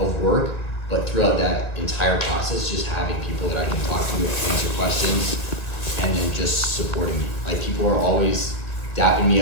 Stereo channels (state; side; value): late; right; 1.7 ms